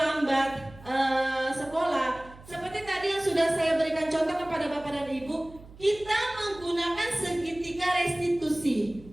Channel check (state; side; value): noise; right; hum, 20 dB below the sound